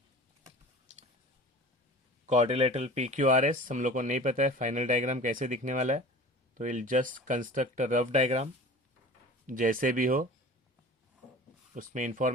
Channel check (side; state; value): both; normal; correlation 0.40